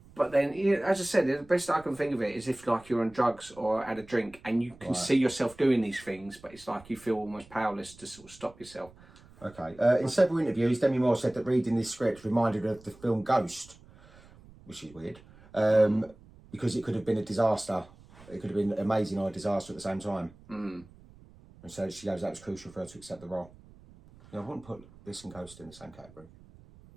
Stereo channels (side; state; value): right; noise; rumble, 23 dB below the sound